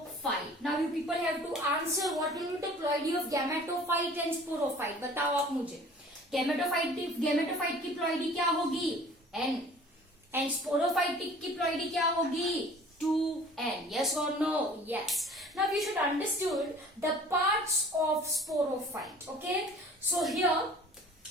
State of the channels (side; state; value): both; normal; correlation 0.48